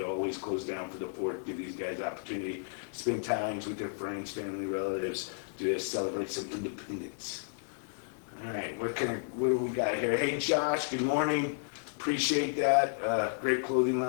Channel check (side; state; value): right; silent; digital silence